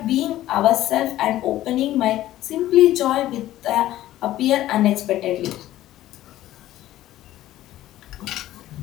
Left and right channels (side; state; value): right; quieter; 14.3 dB